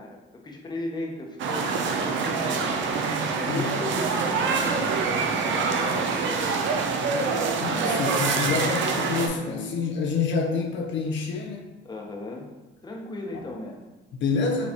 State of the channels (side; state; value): both; normal; correlation 0.20